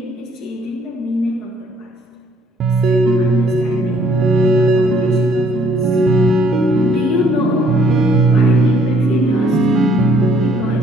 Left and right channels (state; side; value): normal; both; correlation 0.63